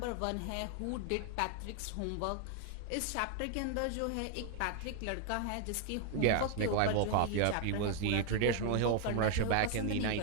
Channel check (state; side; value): different; both; correlation 0.00